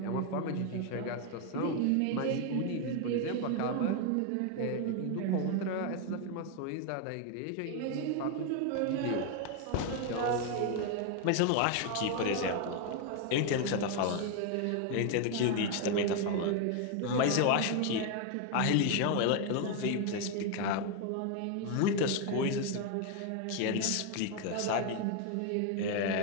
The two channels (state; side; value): different; both; correlation 0.01